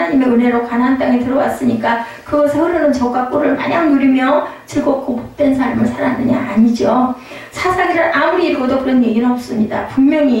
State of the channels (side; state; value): both; identical; correlation 1.00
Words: 은혜로 가나안 땅에 들어왔으니까 그것에 흐르는 젖과 꿀을 마냥 누리며 즐겁고 복된 삶을 살았느냐? 아니죠. 사사기를 아무리 읽어도 그런 얘기는 없습니다.